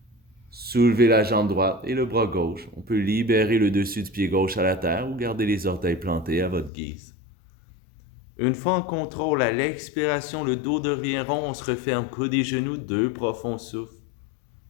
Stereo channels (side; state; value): right; drops out; at 6.7 s